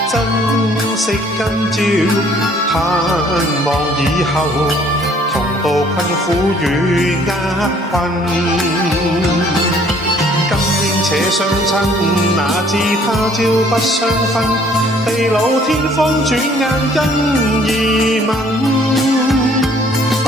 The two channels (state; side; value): normal; both; correlation 0.59